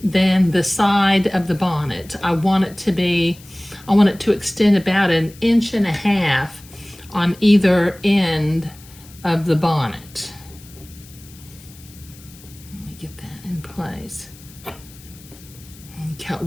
than the side of the bonnet. I want it to extend about 1.5 inches on either end of the bonnet. Let me get that in place. And cut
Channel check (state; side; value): noise; left; hiss, 22 dB below the sound